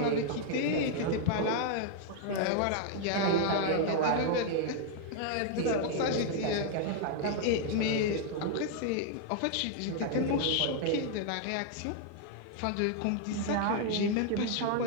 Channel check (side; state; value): both; different; correlation 0.00